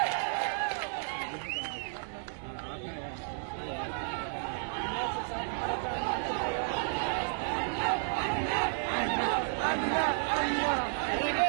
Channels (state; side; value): silent; left; 56 dB below the other